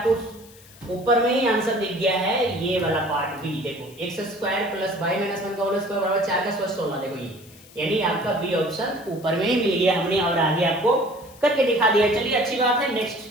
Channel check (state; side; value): noise; left; hiss, 23 dB below the sound